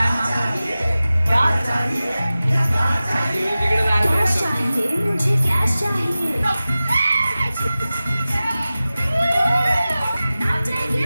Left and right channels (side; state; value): both; inverted; correlation -0.96